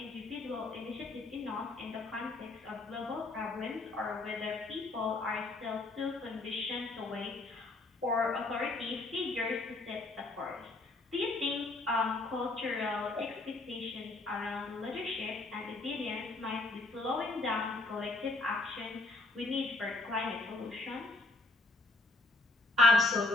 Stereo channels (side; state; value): right; quieter; 3.1 dB